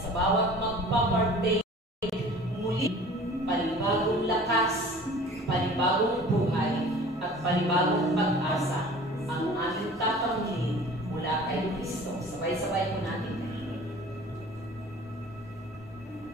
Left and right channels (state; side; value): normal; both; correlation 0.45